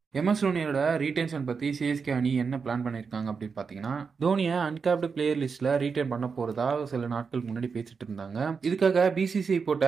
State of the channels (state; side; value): quieter; left; 5.4 dB